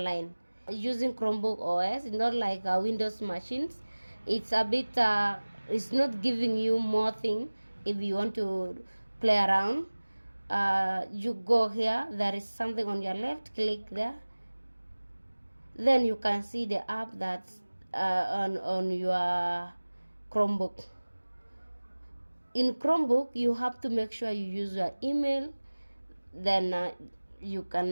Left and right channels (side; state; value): both; inverted; correlation -1.00